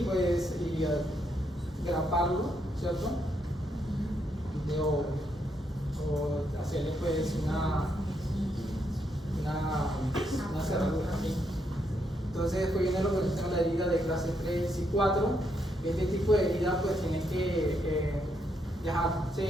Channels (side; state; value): both; normal; correlation 0.78